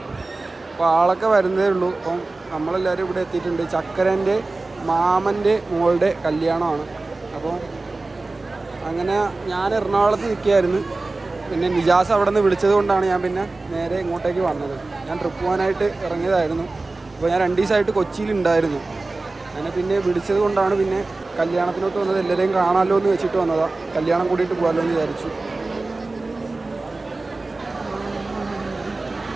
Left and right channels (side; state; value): left; quieter; 3.3 dB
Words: അപ്പോൾ ആളൊക്കെ വരുന്നതേ ഉള്ളൂ. അപ്പം നമ്മളെല്ലാവരും ഇവിടെ എത്തിയിട്ടുണ്ട്. ചക്കരൻ്റെ മാമൻ്റെ മോളുടെ കല്യാണമാണ്. അപ്പോൾ അങ്ങനെ ഞാൻ എറണാകുളത്ത് നിൽക്കുകയായിരുന്നു. പിന്നെ നിജാസ് അവിടെ നിന്ന് വിളിച്ചത് കൊണ്ടാണ് ഞാൻ പിന്നെ നേരെ ഇങ്ങോട്ടേക്ക് വന്നത്. ഞാൻ ട്രിപ്പ് പോകാനായിട്ട് ഇറങ്ങിയതായിരുന്നു. അപ്പോൾ ഞാൻ 2 ദിവസമായിട്ട് കൊച്ചിയിലുണ്ടായിരുന്നു. അങ്ങനെ പിന്നെ വിളിച്ചത് കൊണ്ടാണ് പിന്നെ കല്യാണത്തിനോട്ട് വന്നത്. എല്ലാവരെയും കാണാമല്ലോ എന്ന് വെച്ചിട്ട് വന്നതാണ്. കല്യാണം കൂടിയിട്ട് പോകാമല്ലോ എന്ന് വിചാരിച്ചു.